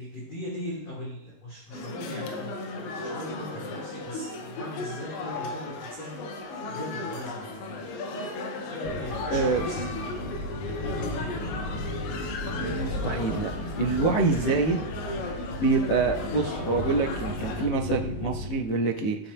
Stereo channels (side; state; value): right; late; 19 ms